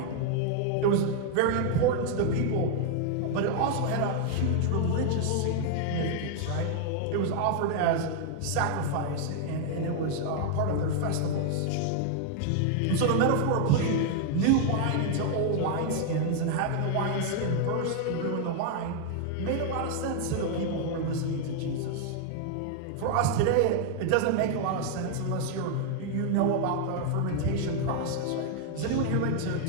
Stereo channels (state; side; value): different; both; correlation 0.00